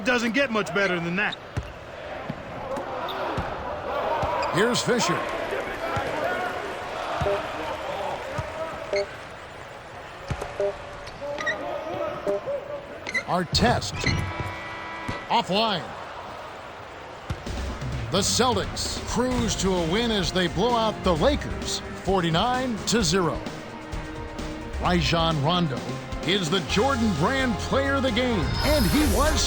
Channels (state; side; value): identical; both; correlation 1.00